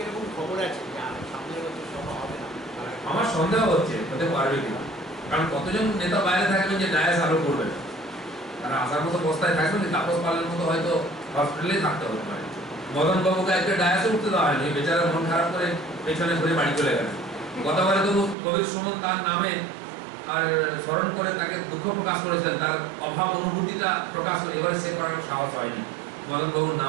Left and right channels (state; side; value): drops out; left; at 18.4 s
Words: আমার সন্দেহ হচ্ছে হতে পারবে কিনা, কারণ কতজন নেতা বাইরে থাকবেন যে ডায়াস আরো করবে, তারা আসার মতো অবস্থায় থাকবেন, তাপস পালের মতো হয়তো হসপিটালে থাকতে হতে পারে। মদন বাবুকে একটা ডায়াসে উঠতে দেওয়া হয়নি, বেচারা মন খারাপ করে পেছনে ঘুরে বাড়ি চলে গেলেন। গতবারে তো কবির সুমন তার নামে আর স্মরণ করে তাকে দুঃখ প্রকাশ করেছেন, তার অভাব অনুভূতিটা প্রকাশ করে, এবারে সে করার সাহস হয়নি। মদন বাবুর